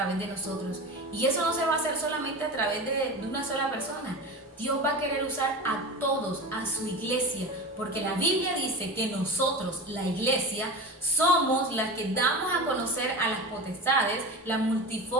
de nosotros. Y eso no se va a hacer solamente a través de una sola persona. Dios va a querer usar a todos, a su iglesia, porque la Biblia dice que nosotros, la iglesia, somos las que damos a conocer a las potestades la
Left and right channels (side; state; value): both; normal; correlation 0.28